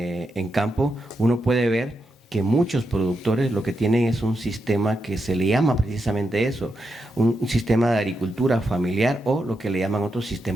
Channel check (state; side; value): normal; both; correlation 0.85